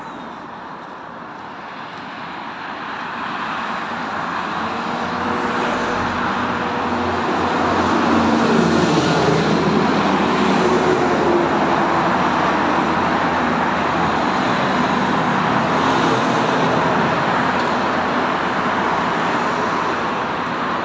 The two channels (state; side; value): identical; both; correlation 1.00